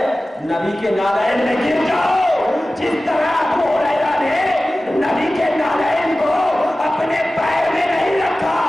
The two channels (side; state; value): both; normal; correlation 0.96